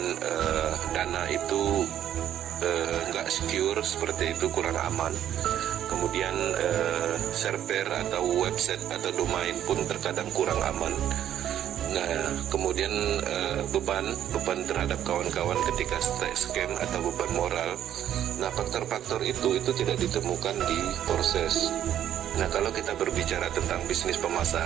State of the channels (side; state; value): left; quieter; 10.8 dB